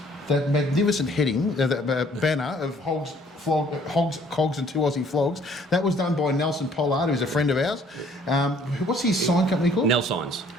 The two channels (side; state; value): both; normal; correlation 0.59